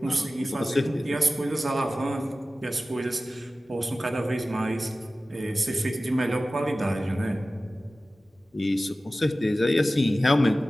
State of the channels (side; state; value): both; normal; correlation 0.96